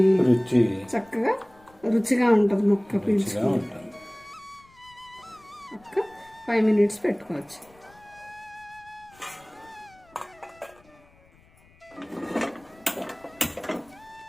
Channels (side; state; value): left; noise; rumble, 29 dB below the sound